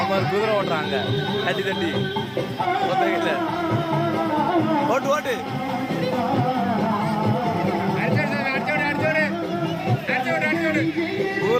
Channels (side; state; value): both; identical; correlation 1.00